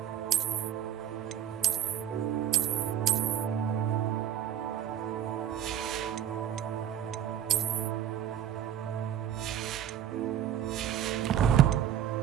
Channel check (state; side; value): quieter; left; 10.2 dB